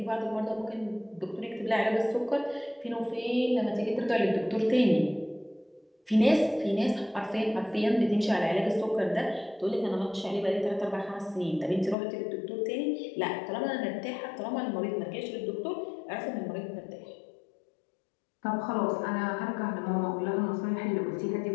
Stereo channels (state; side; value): drops out; right; at 12.0 s